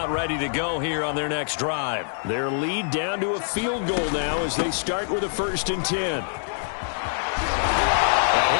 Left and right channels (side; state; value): right; silent; digital silence